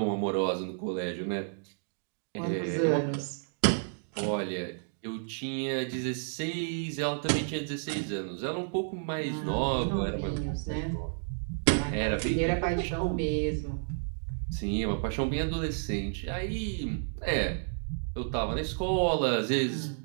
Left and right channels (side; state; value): left; silent; digital silence